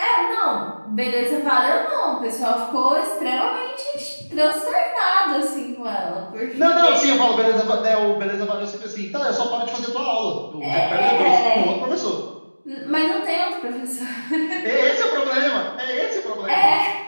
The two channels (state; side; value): inverted; both; correlation -1.00